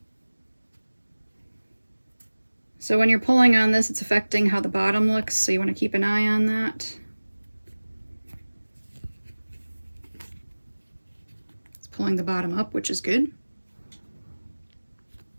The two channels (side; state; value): both; inverted; correlation -1.00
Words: So when you're pulling on this, it's affecting how the bottom looks, so you want to keep an eye on that. It's pulling the bottom up, which is good.